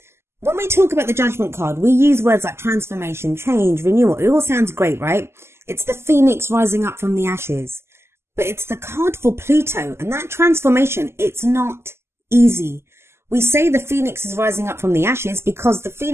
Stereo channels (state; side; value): late; left; 0.12 ms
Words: When we talk about the Judgment card, we use words like transformation, change, renewal. It all sounds great, right? It's the phoenix rising up from the ashes. But it's the card for Pluto, and that transformation, it's not easy. We say the phoenix is rising up from the ashes because the